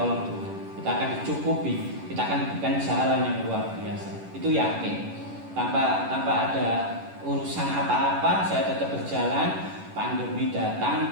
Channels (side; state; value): left; late; 10 ms